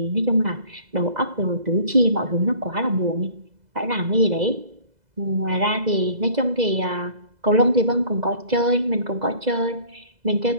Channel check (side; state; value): left; late; 2.0 ms